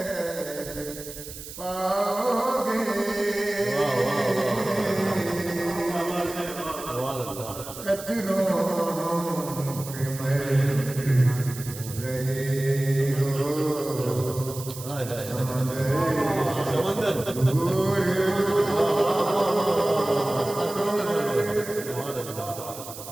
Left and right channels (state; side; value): noise; right; hiss, 12 dB below the sound